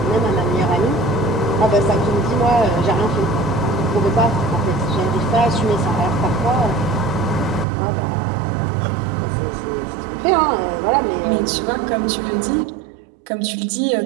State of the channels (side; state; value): left; drops out; at 7.7 s